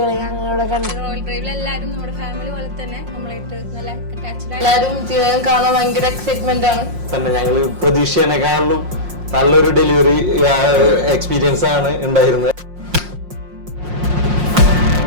ഞങ്ങളിവിടെ കണ്ടു. റോയൽ ഡ്രൈവിൽ എല്ലാവരും നമ്മുടെ ഫാമിലി പോലെ തന്നെ നമ്മളായിട്ട് നല്ല അറ്റാച്ച്ഡ് ആണ്. എല്ലാവരും ജീവകൻ കാണാൻ ഭയങ്കര എക്സൈറ്റ്മെന്റ് ആണ്. തന്നെ ഞങ്ങൾ പ്രതീക്ഷേനേക്കാളും നല്ലൊരു ഡെലിവറി എക്സ്പീരിയൻസ് ആണ് ഉണ്ടായിരുന്നത്.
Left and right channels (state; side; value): late; left; 5.6 ms